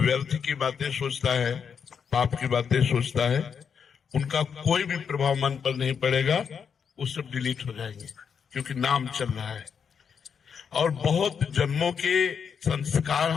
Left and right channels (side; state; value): right; quieter; 6.8 dB